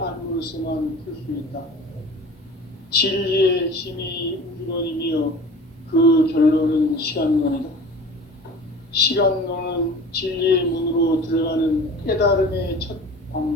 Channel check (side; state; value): both; normal; correlation 0.40